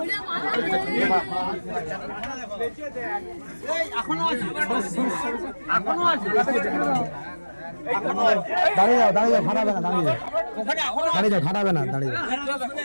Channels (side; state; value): both; inverted; correlation -1.00